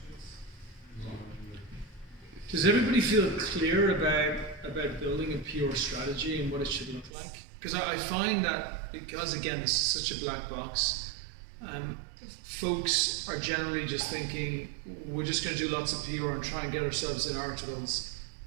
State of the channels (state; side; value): drops out; left; at 7.1 s